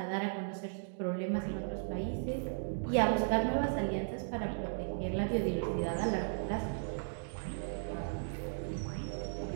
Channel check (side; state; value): left; silent; digital silence